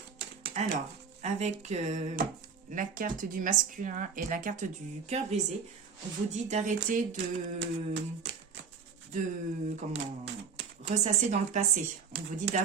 Alors, avec la carte du masculin et la carte du cœur brisé, on vous dit d'arrêter de ressasser dans le passé. On vous dit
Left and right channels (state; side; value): quieter; left; 5.9 dB